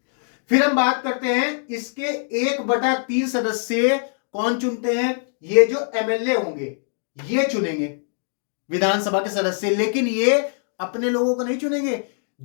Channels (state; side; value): silent; right; digital silence